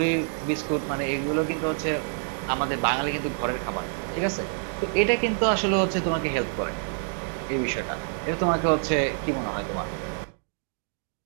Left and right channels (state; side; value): silent; left; 60 dB below the other